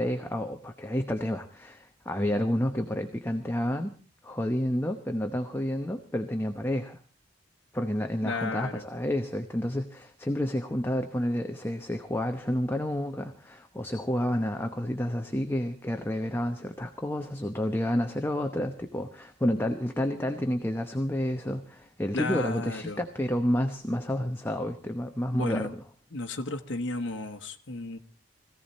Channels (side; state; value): both; normal; correlation 0.85